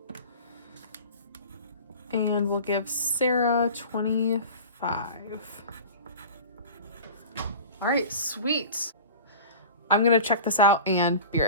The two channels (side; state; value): both; inverted; correlation -0.38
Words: And we'll give Sarah 25. All right, sweet. I'm gonna check this out and be